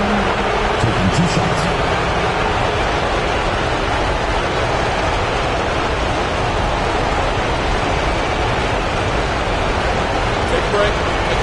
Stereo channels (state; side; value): identical; both; correlation 1.00